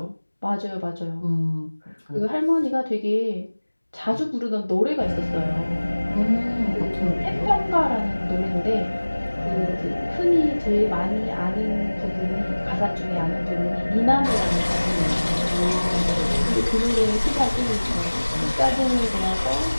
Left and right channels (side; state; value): both; inverted; correlation -1.00